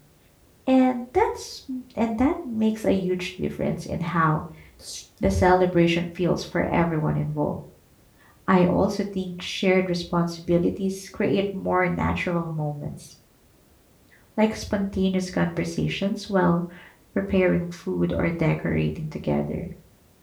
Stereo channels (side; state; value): both; identical; correlation 1.00